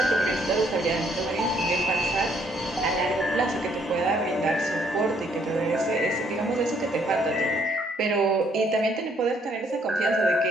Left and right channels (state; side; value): normal; both; correlation 0.67